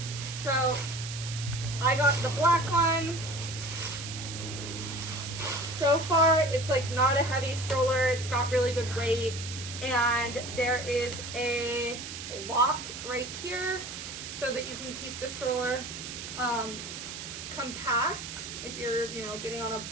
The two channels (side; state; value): right; noise; hiss, 9 dB below the sound